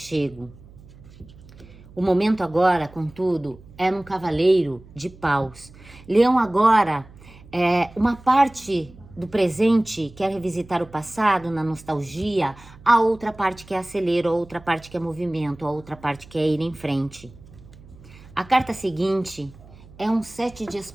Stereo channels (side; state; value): right; noise; hum, 21 dB below the sound